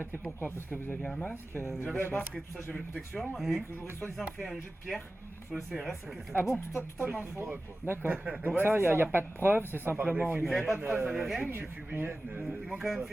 pourquoi? Parce que vous aviez un masque J'avais un masque et tout ça, j'avais la protection. Et que j'aurais soi-disant fait un jet de pierre sur le CRS. Ah bon? Totalement faux. D'accord. Donc Ouais, ça, il c'est n'y a ça. pas de preuve, c'est simplement une... Ils avaient pas de preuve, ils avaient rien. Ils Ils m'ont quand même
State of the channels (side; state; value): both; normal; correlation 0.96